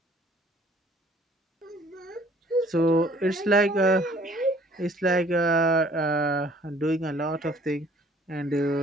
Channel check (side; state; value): both; normal; correlation 0.56